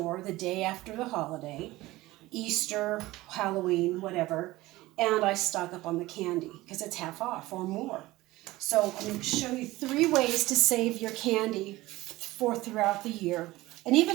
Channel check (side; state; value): left; quieter; 18.5 dB